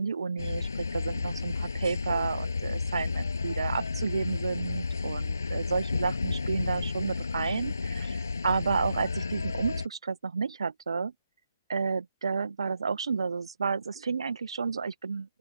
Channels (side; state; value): both; inverted; correlation -0.85